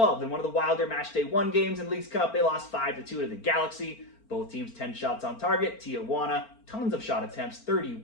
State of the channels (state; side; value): late; right; 4.4 ms